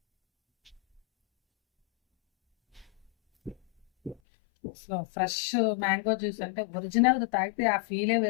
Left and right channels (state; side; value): drops out; right; at 4.2 s